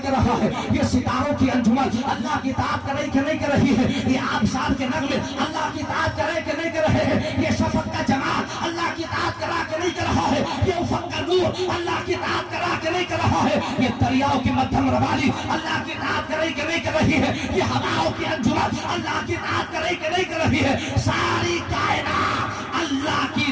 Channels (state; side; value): identical; both; correlation 1.00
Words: रहा है? ये सितारों की अंजुमन अल्लाह की इताअत कर रही कि नहीं कर रही है? ये आबशार के नगमे अल्लाह की इताअत कर रहे कि नहीं कर रहे हैं? ये शफक का जमाल अल्लाह की इताअत कर रहा कि नहीं कर रहा है? ये उफक का नूर अल्लाह की इताअत कर रहा कि नहीं कर रहा है? ये दरियाओं की मध्यम रवाली अल्लाह की इताअत कर रही कि नहीं कर रही है? ये हवाओं की अंजुमन अल्लाह की इताअत कर रही कि नहीं कर रही है? सारी कायनात अल्लाह की